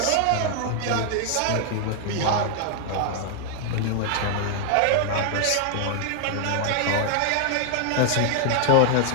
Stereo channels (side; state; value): both; different; correlation 0.00